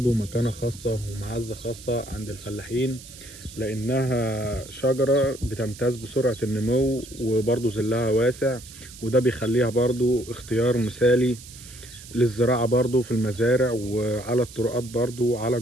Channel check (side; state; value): right; noise; hiss, 17 dB below the sound